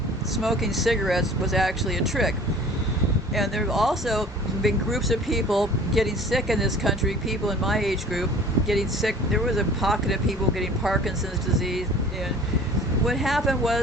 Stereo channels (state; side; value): normal; both; correlation 0.46